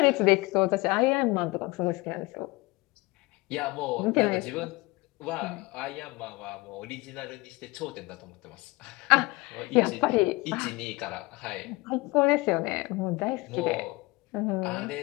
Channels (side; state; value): right; quieter; 23.3 dB